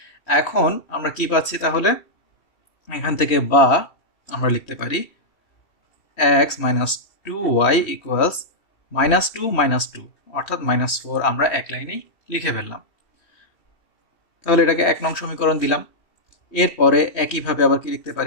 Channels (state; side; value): late; right; 3.1 ms